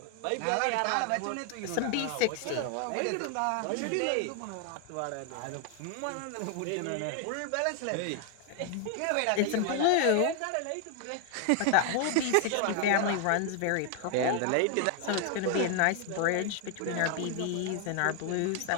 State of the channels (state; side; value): different; both; correlation 0.00